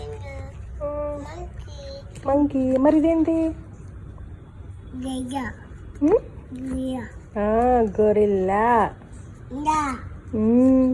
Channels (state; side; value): identical; both; correlation 1.00